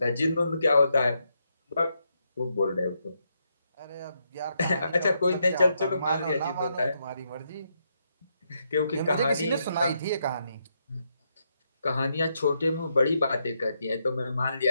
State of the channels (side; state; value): both; inverted; correlation -0.80